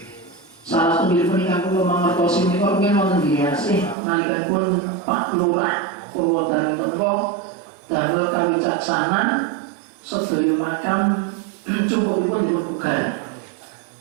Salah satunggalipun ingkang kula mangertosi menika rumiyin wonten biasih nalikanipun Pak Lurah Purwodadi menika damel kawicaksanan sedaya makam cukupipun dipun bugar.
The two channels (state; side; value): drops out; left; at 4.0 s